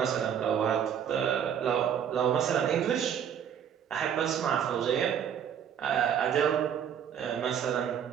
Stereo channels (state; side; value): quieter; left; 8.7 dB